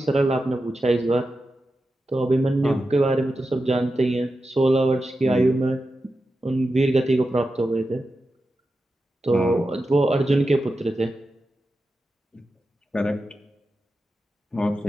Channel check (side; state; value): both; normal; correlation 0.91